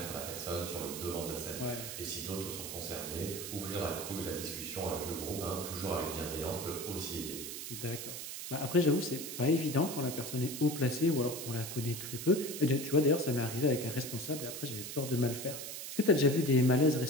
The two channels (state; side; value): noise; right; hiss, 7 dB below the sound